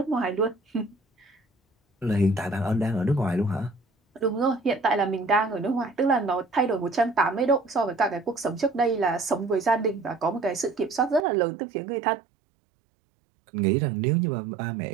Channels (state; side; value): drops out; left; at 11.2 s